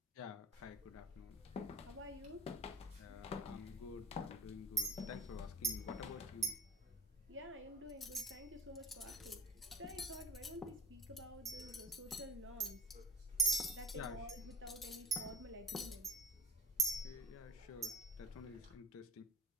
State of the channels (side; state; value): both; normal; correlation 0.36